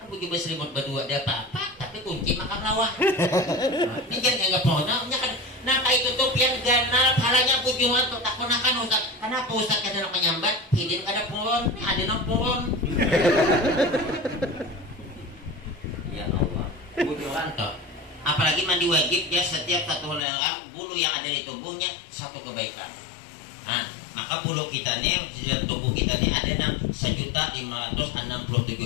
aku juga selimut berdua ada apa tapi kunci makan lawan ini jangan anggap pohonnya kan nah kayak tutup yang ganal palanya pujuan tuh tak ponakan Ustaz. Kenapa Ustaz kada nak menyambat hidin kada puron ada nang puron ya Allah pujuan tuh Apalagi mandi wajib ya, setiap satu helai bulu yang ada di tubuhnya satu kebaikan. Nah, maka bulu kita nih di dalam tubuh kita nih ada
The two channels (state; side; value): drops out; right; at 20.2 s